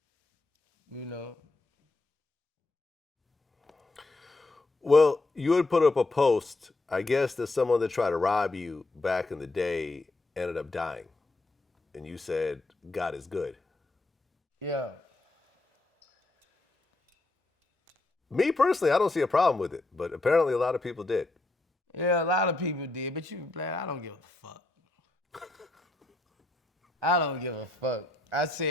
You know. Well, you had put up a post, I guess, that someone that tried to rob you back in the day ended up dying. And you said, God is good. Yeah. Me personally, I don't see a problem with it, but apparently a lot of people did. Yeah, a lot of people did, but I don't give a fuck. I don't give a fuck. I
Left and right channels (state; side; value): quieter; right; 3.0 dB